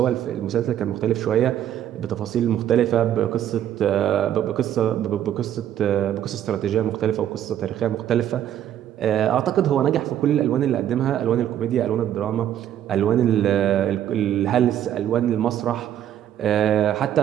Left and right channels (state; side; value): quieter; left; 10.9 dB